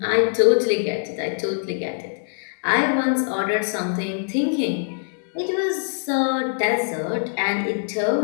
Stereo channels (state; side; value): silent; right; 63 dB below the other